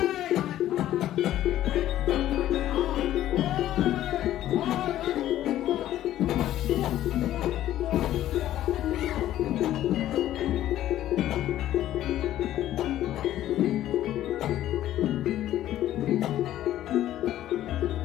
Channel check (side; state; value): right; quieter; 13.0 dB